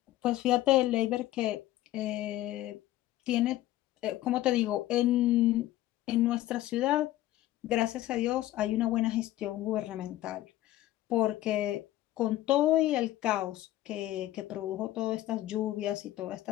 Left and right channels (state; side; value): quieter; right; 15.0 dB